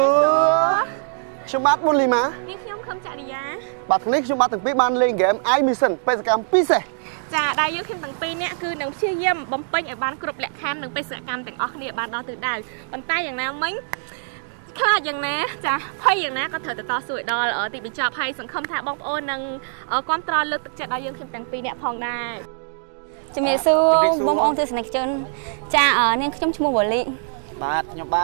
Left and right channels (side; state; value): left; silent; digital silence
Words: ខ្ញុំបាទមុនលីម៉ានេះខ្ញុំខំចរិយាបាទថ្ងៃនេះខ្ញុំបាទទាំងពីរបានលេងហ្គេម I Mission បេសកកម្មពិសេសចាដែលយើងខ្ញុំទាំងពីរនាក់គឺនឹងព្យាយាមបំពេញឲ្យបានគ្រប់លក្ខខណ្ឌនិងបេសកកម្មទាំងអស់គ្នាបានដល់ទិសដៅប៉ុន្តែយ៉ាងណាមិញខ្លាចយ៉ាងណាចាភ័យយ៉ាងណាក៏ត្រូវទៅតស៊ូឲ្យដល់ទីបញ្ចប់ហើយសង្ឃឹមថាបងប្អូននឹងគ្រប់គ្រងលើកទឹកចិត្តដល់យើងខ្ញុំទាំងពីរនាក់ផងដែរជំរាបសួរបងប្អូនទស្សនិកជនចានាងខ្ញុំឈ្មោះវ៉ូលីបាទខ្ញុំប